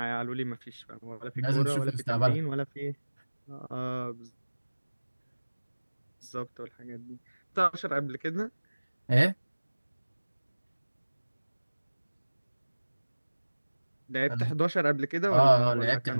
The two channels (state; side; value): inverted; both; correlation -1.00